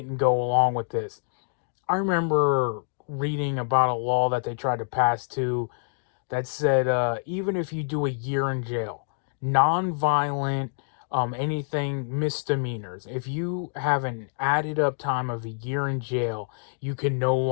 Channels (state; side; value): silent; right; digital silence